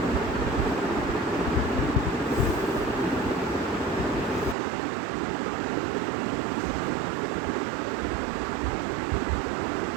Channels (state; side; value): drops out; left; at 4.5 s